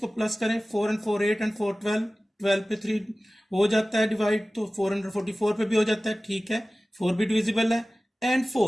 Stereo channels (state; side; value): normal; both; correlation 0.97